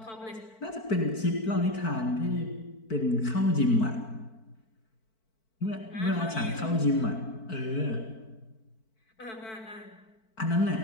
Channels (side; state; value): right; late; 4.5 ms